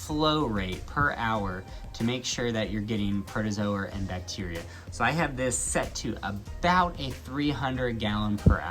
rate per hour to make sure that you're getting protozoa and bacteria. So I have this set to about a 300 gallon per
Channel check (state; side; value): identical; both; correlation 1.00